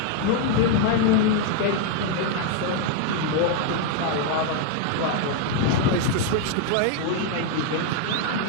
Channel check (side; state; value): both; different; correlation 0.00